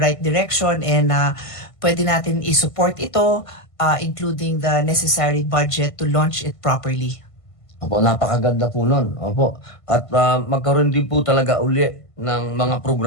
direction and pwede natin i-support ito, including the necessary budget to launch it properly. Opo, napakaganda po nun. Opo. At magkaroon din po talaga uli ng mga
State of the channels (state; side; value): late; right; 1.5 ms